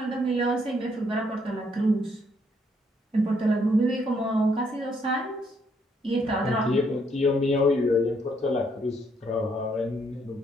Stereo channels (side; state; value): both; normal; correlation 0.72